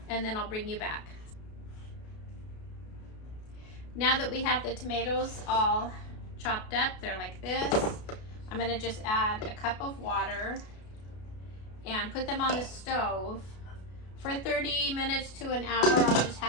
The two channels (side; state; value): right; late; 33 ms